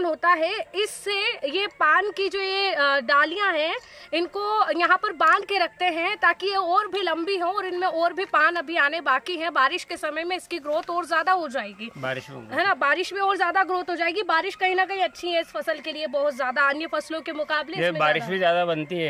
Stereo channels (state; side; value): identical; both; correlation 1.00